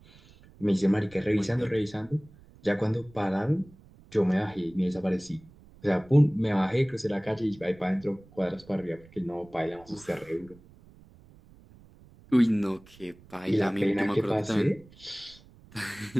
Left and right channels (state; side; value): noise; right; rumble, 24 dB below the sound